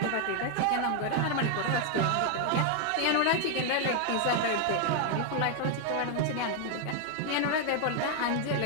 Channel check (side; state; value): both; different; correlation 0.00